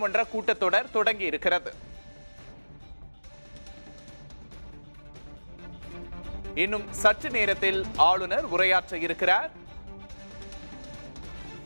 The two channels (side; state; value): both; inverted; correlation -1.00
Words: கூட்டத்தொடர் தொடங்கி இருக்கிறது. இன்னும் சற்று நேரத்தில் ஆளுநர் உரையாற்ற இருக்கிறார்.